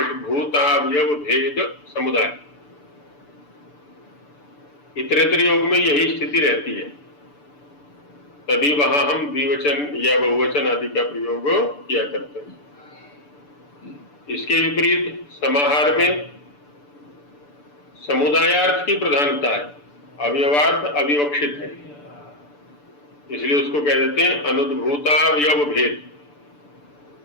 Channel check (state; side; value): late; right; 6.9 ms